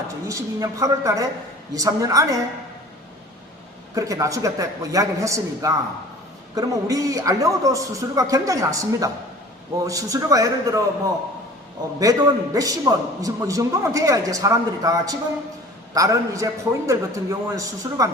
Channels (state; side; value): normal; both; correlation 0.45